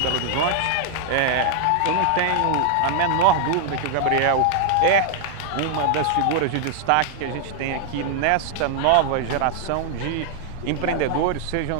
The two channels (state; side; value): different; both; correlation 0.00